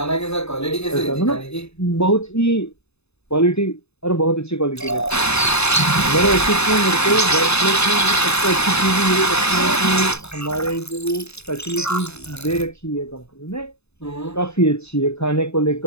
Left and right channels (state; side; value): late; right; 0.80 ms